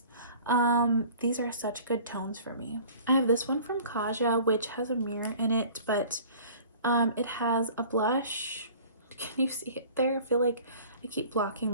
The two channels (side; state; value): both; inverted; correlation -0.47